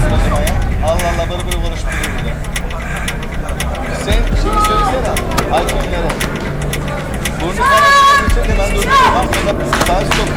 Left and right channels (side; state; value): both; identical; correlation 1.00